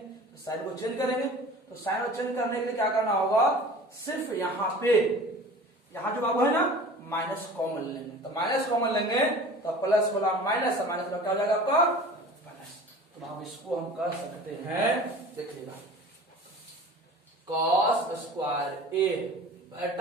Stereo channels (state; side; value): normal; both; correlation 0.41